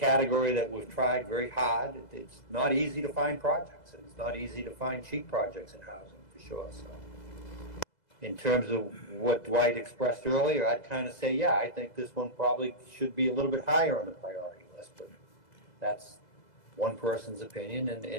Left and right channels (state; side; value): late; right; 2.0 ms